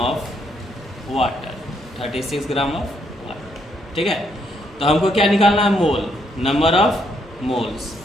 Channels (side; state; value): both; normal; correlation 0.74